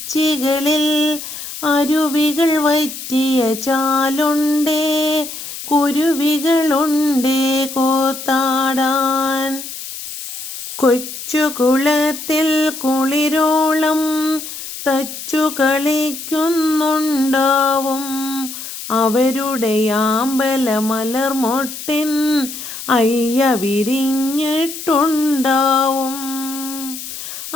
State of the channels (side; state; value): left; noise; hiss, 10 dB below the sound